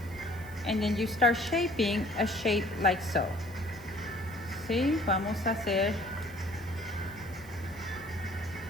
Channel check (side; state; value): right; noise; hiss, 22 dB below the sound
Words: and then you start shaping a shape like so. ¿Sí? Vamos a hacer